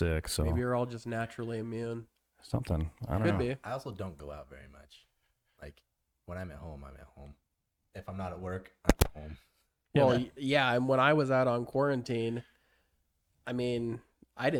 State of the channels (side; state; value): both; identical; correlation 1.00